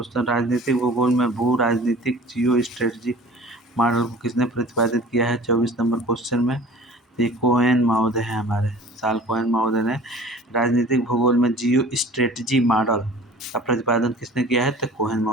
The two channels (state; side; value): normal; both; correlation 0.45